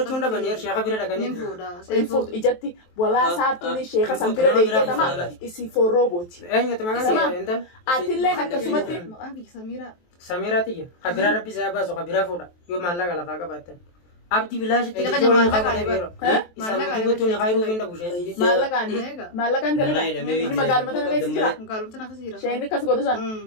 dhabanii sheeka bira dhaqanii nin fuudha. Fuutu ijatti walaa saartuun sheeka san bira dheeyitee nama isi forroo booti. eenyutu maqaan intal Atillee akkasumatti Maqaan kiyya Samiiraa. Samiiraati jira kabiraa rabbi isaa baasu kabiraa fuudha yoo maallaqa lafaa qabaatan abdi bilaashitti Egaa ijoollee maallaqa qabatee biro isaan mutuutu ni hayruu fi ndabu sheetii maallaqaan dalagaa inni magaaluma tana keessa jira. Magaalota akkasii jira. Sheenni akkas godhu san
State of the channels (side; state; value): right; late; 23 ms